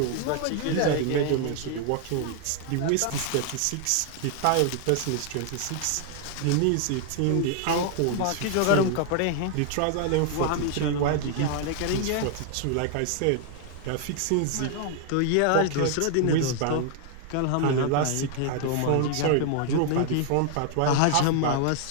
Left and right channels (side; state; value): both; different; correlation 0.00